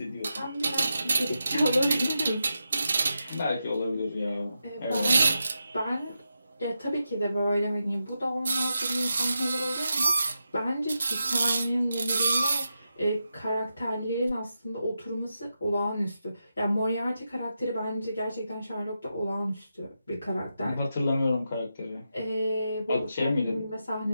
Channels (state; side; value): inverted; both; correlation -0.87